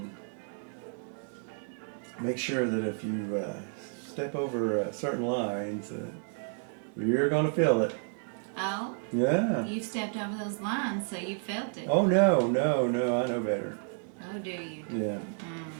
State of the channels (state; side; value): silent; left; 57 dB below the other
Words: make sure that if you step over certain lines, you're going to feel it. Oh? Yeah. You've stepped over those lines, so you felt it. Oh, no, I know better. Oh, do you? Yeah.